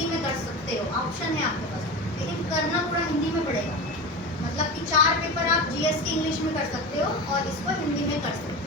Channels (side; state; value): both; normal; correlation 0.26